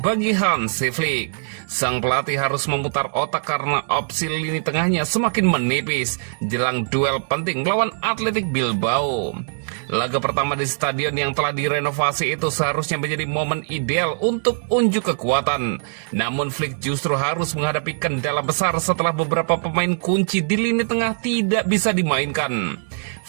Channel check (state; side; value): silent; left; digital silence